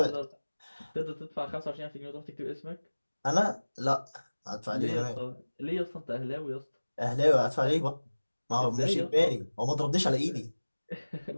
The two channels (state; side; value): inverted; both; correlation -1.00